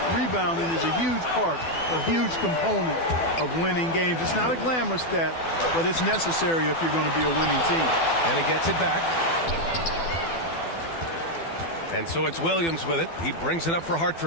rebounding is a huge part, a huge component of winning games. It's not a glamorous stat, but it's necessary if you're going to be a winning team. And he gets it back. And so it's Williams with it. He brings it up for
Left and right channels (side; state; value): right; late; 12 ms